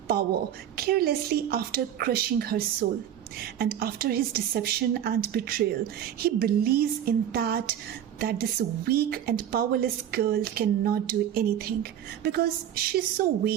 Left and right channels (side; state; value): left; quieter; 10.3 dB